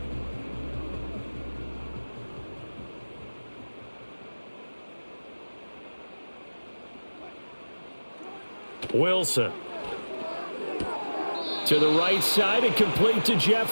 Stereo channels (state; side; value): inverted; both; correlation -1.00